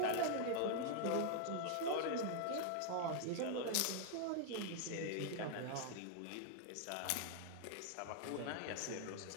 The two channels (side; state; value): both; different; correlation 0.00